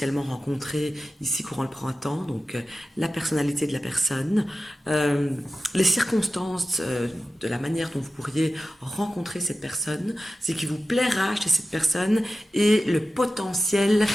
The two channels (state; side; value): normal; both; correlation 0.94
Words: rencontrer ici courant le printemps. Donc la personnalité de la personne, euh, les circonstances de la manière dont vous pourriez rencontrer cette personne, ce qui vous plaira chez cette personne et le potentiel